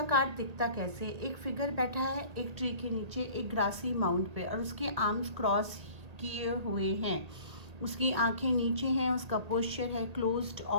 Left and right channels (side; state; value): left; late; 1.8 ms